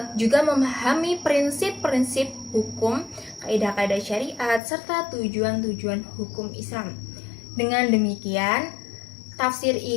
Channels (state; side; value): drops out; right; at 4.6 s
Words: juga memahami prinsip-prinsip hukum, kaidah-kaidah syariat, serta tujuan-tujuan hukum Islam. Dengan demikian, tafsir